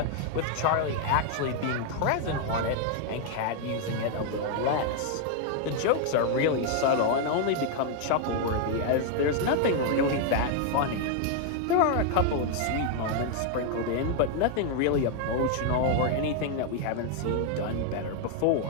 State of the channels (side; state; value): both; different; correlation 0.00